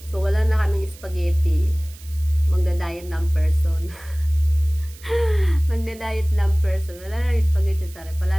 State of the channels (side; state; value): right; noise; hiss, 21 dB below the sound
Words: So, wala na kaming spaghetti. Magda-diet ng person. Magda-diet ng person. Wala na rin spaghetti sa rep.